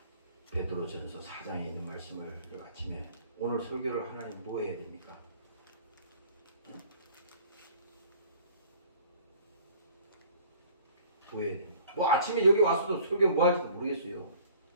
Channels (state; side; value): inverted; both; correlation -0.51